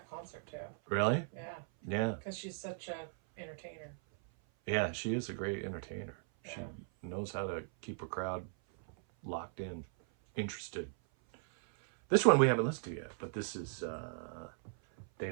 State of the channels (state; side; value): silent; left; 53 dB below the other